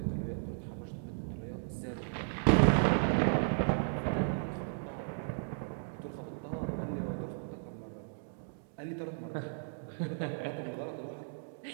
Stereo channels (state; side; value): silent; left; digital silence